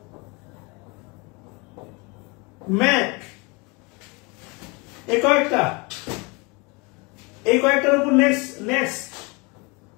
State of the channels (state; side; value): quieter; right; 28.2 dB